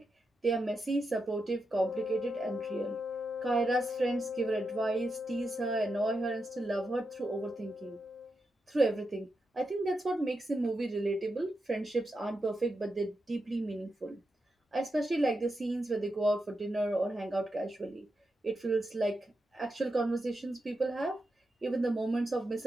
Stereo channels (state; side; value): normal; both; correlation 0.87